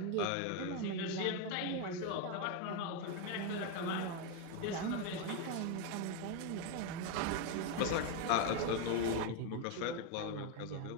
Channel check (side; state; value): both; different; correlation 0.02